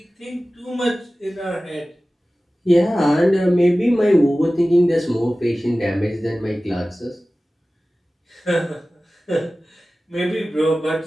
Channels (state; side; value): normal; both; correlation 0.97